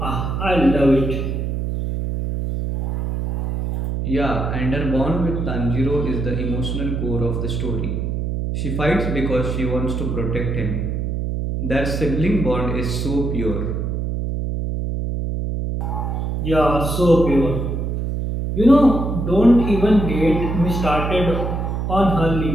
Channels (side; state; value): right; noise; hum, 2 dB below the sound